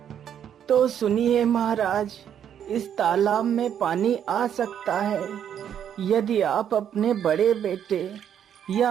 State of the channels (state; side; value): quieter; left; 9.2 dB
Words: तो सुनिए महाराज, इस तालाब में पानी आ सकता है यदि आप अपने बड़े बेटे